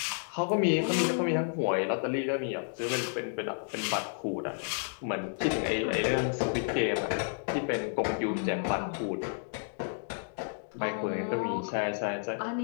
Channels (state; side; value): silent; right; digital silence